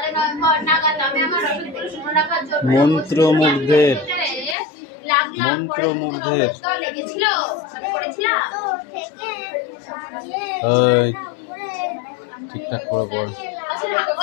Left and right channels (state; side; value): drops out; right; at 4.5 s